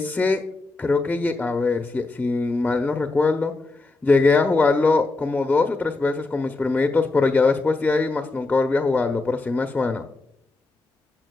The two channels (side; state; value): right; quieter; 3.4 dB